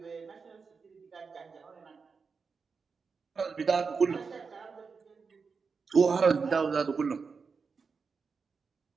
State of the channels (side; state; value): left; quieter; 5.1 dB